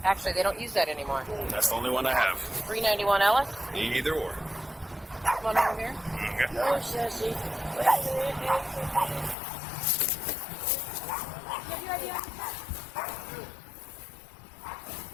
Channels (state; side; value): drops out; right; at 9.3 s